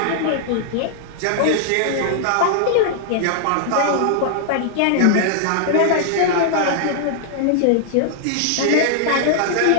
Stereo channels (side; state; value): both; different; correlation -0.01